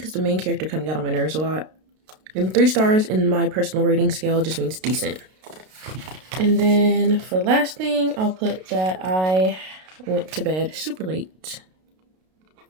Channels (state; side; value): late; left; 32 ms